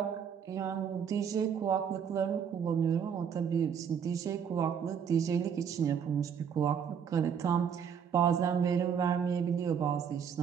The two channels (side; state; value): left; quieter; 7.5 dB